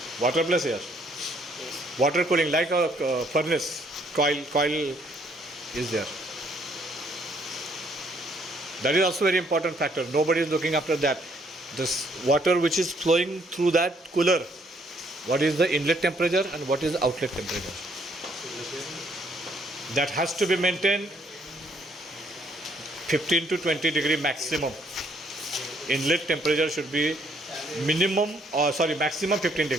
Water plus air. Water cooling like a furnace. Coil is there. That is also very important factor. Nobody is looking after that. This water which is flowing through that cooler, what is the inlet temperature and what is the outlet temperature? That has to be maintained 15 to 20 degree maximum. Inlet temperature should be maximum 15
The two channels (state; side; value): normal; both; correlation 0.67